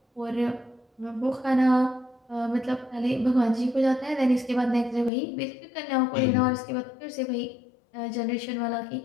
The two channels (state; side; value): drops out; right; at 5.1 s